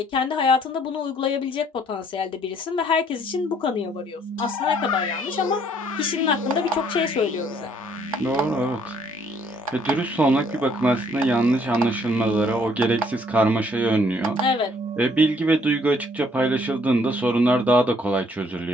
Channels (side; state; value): both; normal; correlation 0.64